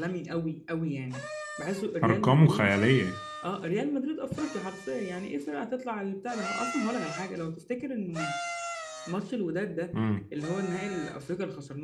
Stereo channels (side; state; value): both; identical; correlation 1.00